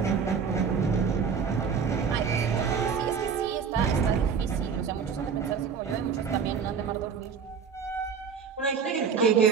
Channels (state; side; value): quieter; left; 6.3 dB